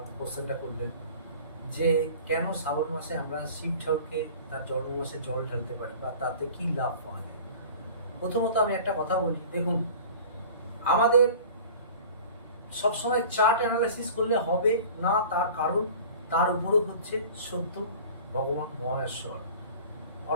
কোশ্চেনটা করলেন যে কেন শ্রাবণ মাসে আমরা শিব ঠাকুরকে তার জন্ম মাসে জল ঢালতে পারি বা তাতে কি লাভ পাওয়া যায়। প্রথমত আমি একটা কথা বলি, দেখুন আমাদের সবসময় চার্ট অ্যানালাইসিস করলে হবে না, তার কারণ তার উপরও হচ্ছে সত্য ভগবান মহেশ্বর,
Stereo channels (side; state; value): both; inverted; correlation -0.43